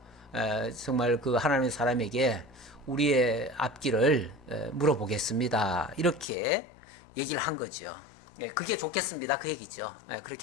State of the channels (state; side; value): drops out; right; at 6.2 s